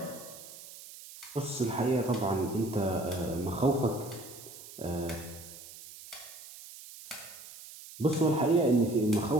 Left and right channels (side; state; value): right; noise; hiss, 16 dB below the sound